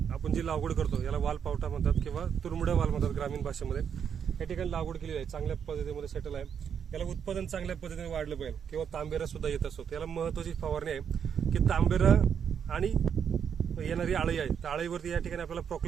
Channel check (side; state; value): left; quieter; 7.7 dB